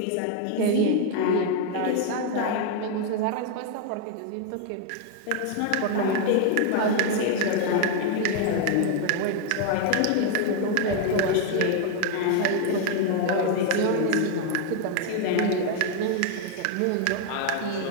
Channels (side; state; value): both; different; correlation 0.00